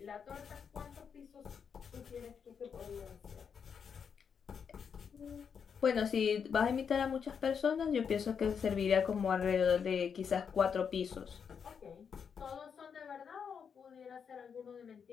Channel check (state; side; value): quieter; right; 6.8 dB